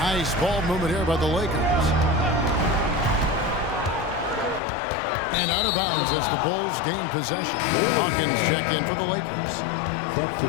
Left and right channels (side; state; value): right; drops out; at 4.6 s